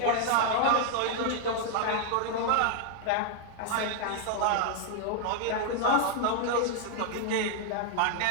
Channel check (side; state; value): both; different; correlation 0.00